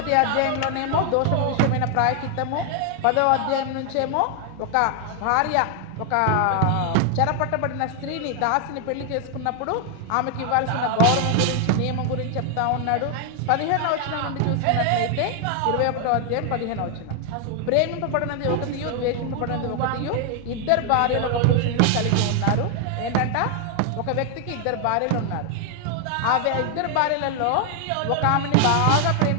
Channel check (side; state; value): both; different; correlation 0.00